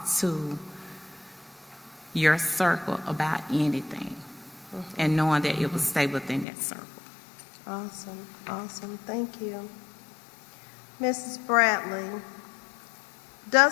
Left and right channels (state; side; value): drops out; right; at 6.5 s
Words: to your circle about anything, and knowing that it will stay within that circle. Awesome. Thank you. Mrs. Bradley,